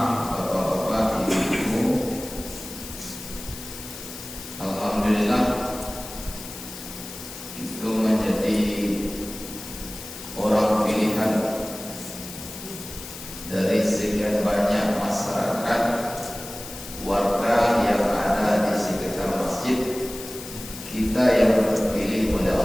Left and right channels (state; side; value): noise; left; hiss, 12 dB below the sound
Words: bapak-bapak, ibu-ibu, alhamdulillah itu menjadi orang pilihan dari sekian banyak masyarakat warga yang ada di sekitar masjid. Kita yang terpilih oleh